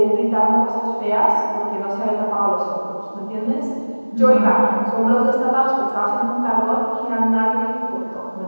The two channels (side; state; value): both; inverted; correlation -1.00